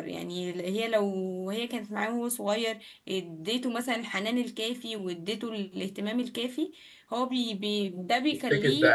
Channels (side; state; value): both; identical; correlation 1.00